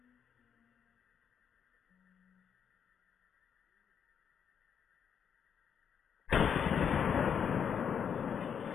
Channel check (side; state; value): right; quieter; 7.6 dB